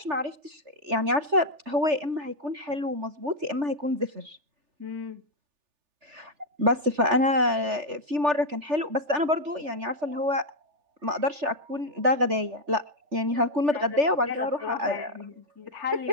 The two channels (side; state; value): left; late; 3.4 ms